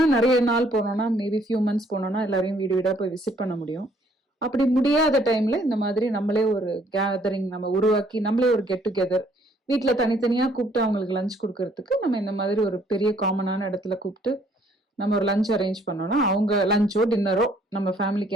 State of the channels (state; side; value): normal; both; correlation 0.63